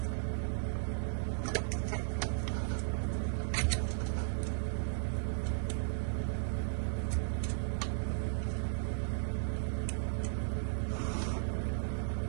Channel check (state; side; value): silent; left; 54 dB below the other